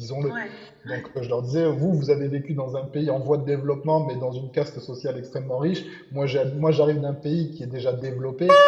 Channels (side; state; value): both; identical; correlation 1.00